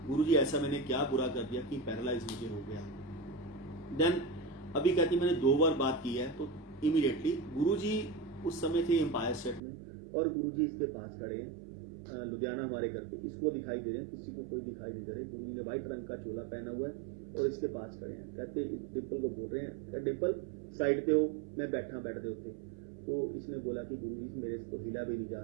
गुरुजी ऐसा मैंने क्या बुरा कर दिया कि पैरालाइज मुझे हो गया। देन अभी कहती मैंने 2 बार बात की है। तो इमीडिएटली गुरुजी उस समय थे एम्पायर स्टेट में, और गुरुजी इसके पास खड़े हैं लुधियाना हमारे घर पे, इसको दिखाई दे रहे हैं, किसी को कोई दिखाई नहीं दे रहे। गुरुजी ने व्हाइट रंग का चोला पहना हुआ है और इसके पास खड़े हैं। कहते डिम्पल को बोल रहे हैं, कहते डिम्पल साइड पे हो, मैं बैठा बेड दे उत्ते। तो इसने बोला कि गुरुजी मेरे से तो हिला भी नहीं जा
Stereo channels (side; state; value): left; drops out; at 9.6 s